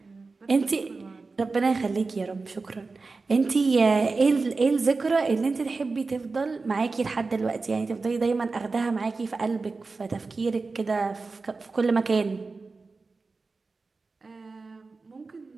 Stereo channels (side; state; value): left; quieter; 4.0 dB